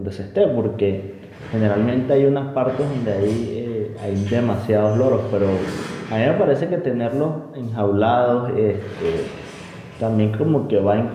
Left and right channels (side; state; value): both; identical; correlation 1.00